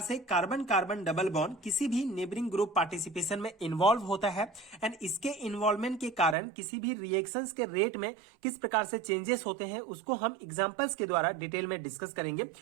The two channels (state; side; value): drops out; left; at 6.4 s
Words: से कार्बन कार्बन डबल बॉन्ड किसी भी नेबरिंग ग्रुप पार्टिसिपेशन में इन्वॉल्व होता है एंड इसके इन्वॉल्वमेंट के कारण किसी भी रिएक्शंस के रेट में किस प्रकार से चेंजेस होते हैं, उसको हम एग्जांपल्स के द्वारा डिटेल में डिस्कस करेंगे।